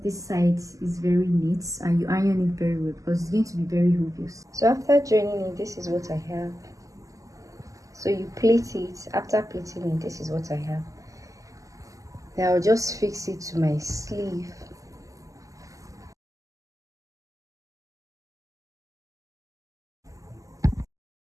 this side is very neat and you iron it very well because it's going to be very obvious. So after joining it, this is what I have. So you plait it. After plaiting it, this is what I have. Now I'll just fix it to my sleeve.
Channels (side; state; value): left; late; 0.16 ms